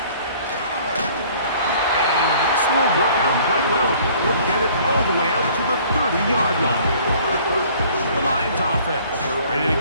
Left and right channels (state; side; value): inverted; both; correlation -0.55